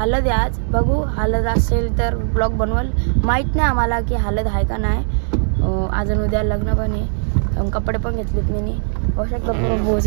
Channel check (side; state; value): left; silent; digital silence